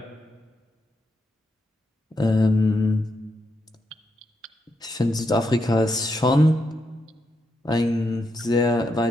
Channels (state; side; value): normal; both; correlation 0.82